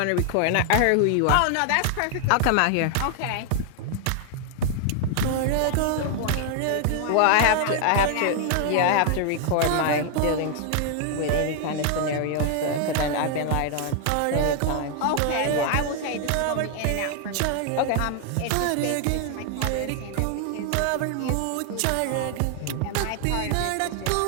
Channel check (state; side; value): different; both; correlation 0.00